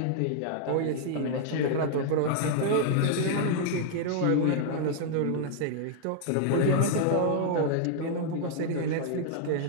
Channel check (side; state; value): both; different; correlation -0.01